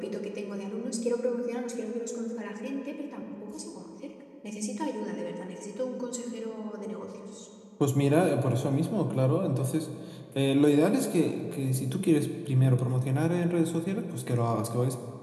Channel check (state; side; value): identical; both; correlation 1.00